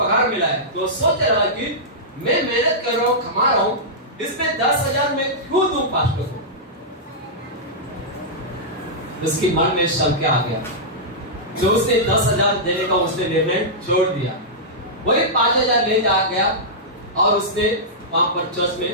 मिला है, तो सोच रहा कि मैं मेहनत कर रहा हूँ, कमा रहा हूँ, इसमें 10,000 में क्यों दूं पास्टर को। उसकी मन में संख्या आ गया, जो उसने 10,000 देने का उसने निर्णय छोड़ दिया। वही 5,000 ले जा गया और उसने वहां पर चर्च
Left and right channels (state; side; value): normal; both; correlation -0.12